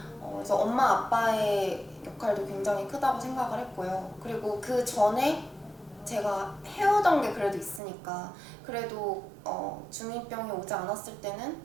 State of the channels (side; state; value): left; drops out; at 7.8 s